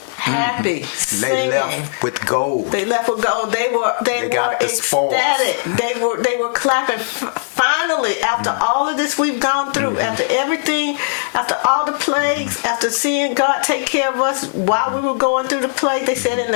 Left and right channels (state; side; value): silent; right; 60 dB below the other